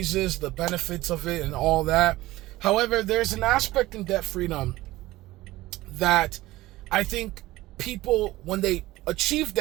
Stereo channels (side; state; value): left; quieter; 17.8 dB